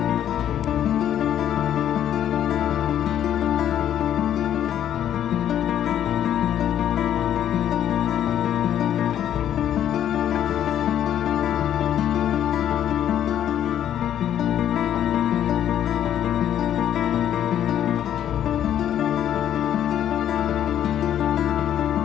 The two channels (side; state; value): right; quieter; 10.6 dB